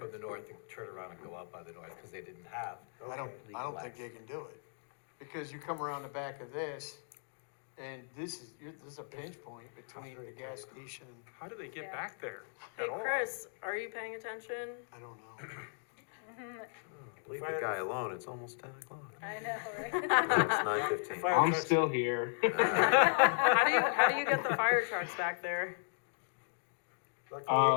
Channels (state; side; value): silent; right; digital silence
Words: the north and turn around and go out by the north, because they didn't have. I don't think they can do it, because you come around the back of this, and this is a pinch point between the gas station, How do they get Yeah. back there Hey, at all? Chris, are you paying attention? I don't know. Leave the guy alone, it's almost 10 o'clock. I know, right? It's 9:15. Fire I'm trucks- still here. How do you get the fire trucks back there?